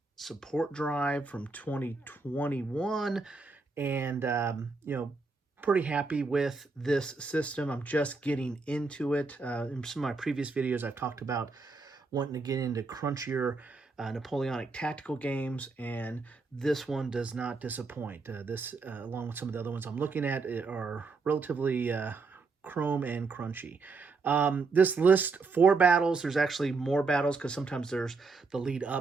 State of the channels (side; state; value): left; quieter; 4.1 dB